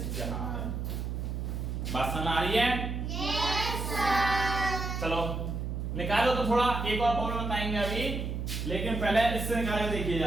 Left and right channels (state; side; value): noise; right; hum, 3 dB below the sound